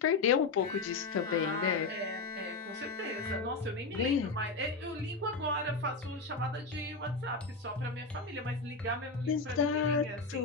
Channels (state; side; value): quieter; right; 3.9 dB